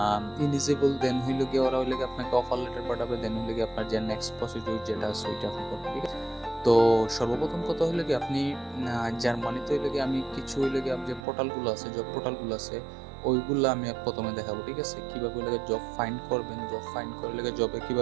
ইলিজিবল, দেন হইল গিয়ে ওরা আপনাকে অফার লেটার পাঠাবে, দেন হইল গিয়ে আপনার যে নেক্সট প্রসিডিউর যেটা আছে ওইটা আপনি করবেন, ঠিক আছে? তো সর্বপ্রথম কথা হলো কি আপনি জার্মানিতে আমি কিছু যে পোর্টালগুলো আছে, জব পোর্টালগুলো আছে, ওইগুলো আমি প্রথমে দেখাবো, ঠিক আছে? কিভাবে জব ফাইন্ড করবেন, জব ফাইন্ড করে জবে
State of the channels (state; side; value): drops out; left; at 11.2 s